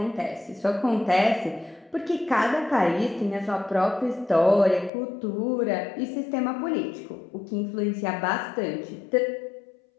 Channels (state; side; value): drops out; right; at 4.9 s